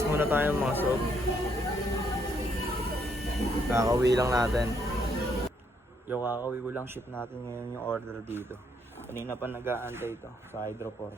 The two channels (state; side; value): normal; both; correlation 0.72